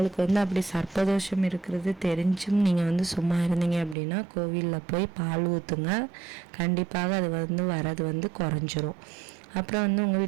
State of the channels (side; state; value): left; drops out; at 4.0 s